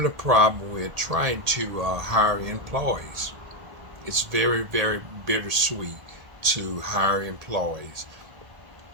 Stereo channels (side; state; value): left; late; 1.8 ms